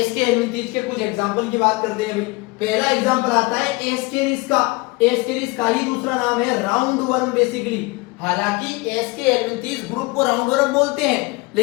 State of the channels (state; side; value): quieter; right; 25.0 dB